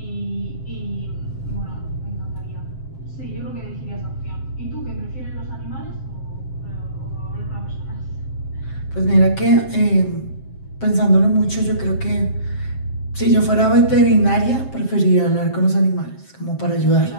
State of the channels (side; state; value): right; late; 7.6 ms